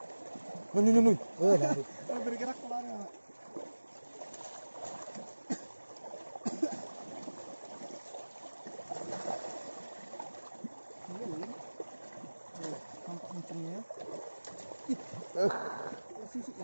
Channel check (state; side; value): inverted; both; correlation -1.00